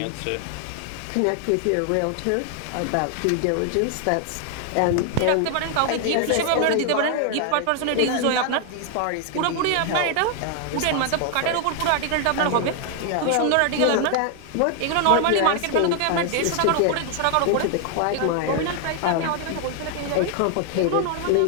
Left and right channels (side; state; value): both; different; correlation 0.00